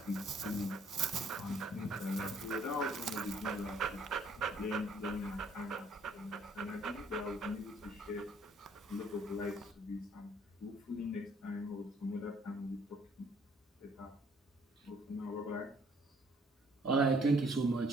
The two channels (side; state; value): both; normal; correlation 0.62